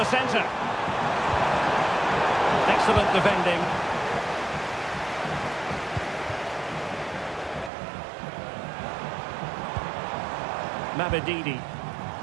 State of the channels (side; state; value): left; drops out; at 7.7 s